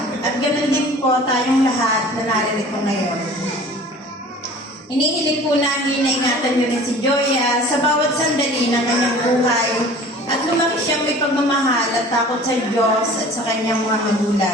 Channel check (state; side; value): normal; both; correlation 0.45